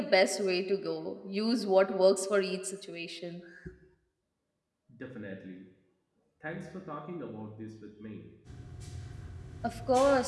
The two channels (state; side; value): identical; both; correlation 1.00